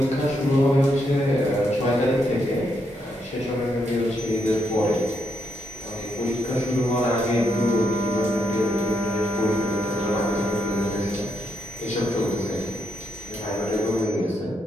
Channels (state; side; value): normal; both; correlation 0.78